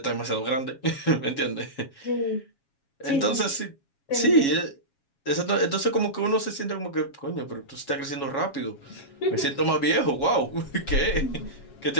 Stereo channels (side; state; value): right; late; 7.2 ms